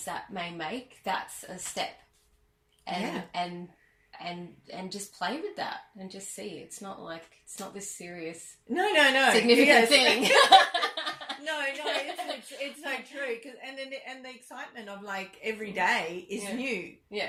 that may make, that's a step. And just play with that and just see. It's not this serious, significant thing. No, it's so true. And the excitement of like every day is new.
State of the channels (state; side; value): identical; both; correlation 1.00